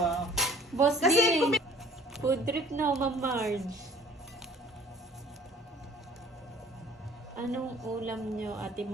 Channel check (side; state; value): both; normal; correlation 0.51